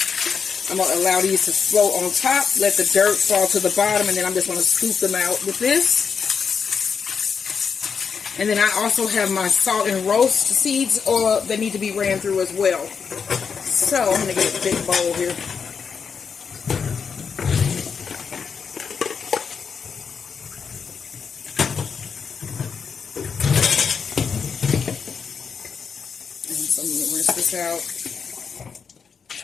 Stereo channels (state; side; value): quieter; right; 6.2 dB